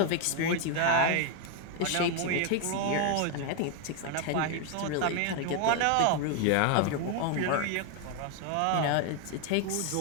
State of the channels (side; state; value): both; different; correlation 0.01